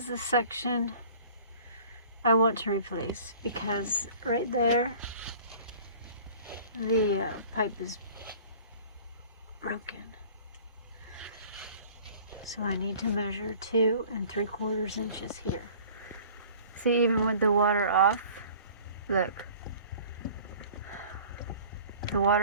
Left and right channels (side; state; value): both; inverted; correlation -0.48